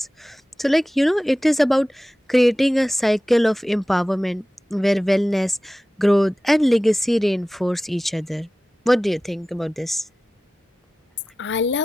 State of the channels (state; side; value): normal; both; correlation 0.96